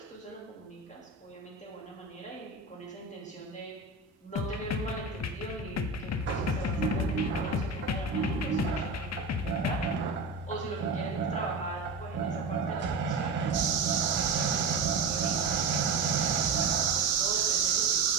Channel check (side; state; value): left; quieter; 3.9 dB